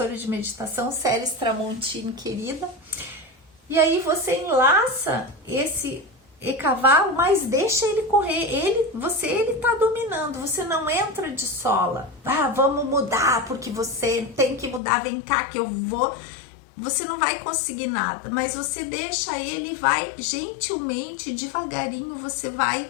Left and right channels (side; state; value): right; drops out; at 14.8 s